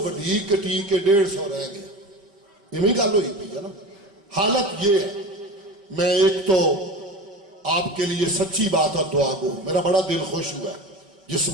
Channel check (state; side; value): late; left; 5.0 ms